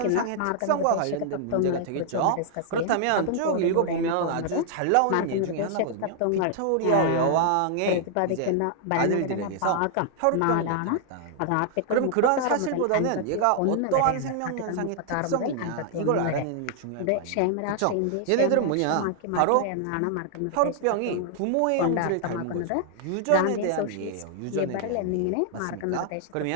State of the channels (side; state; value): both; different; correlation 0.00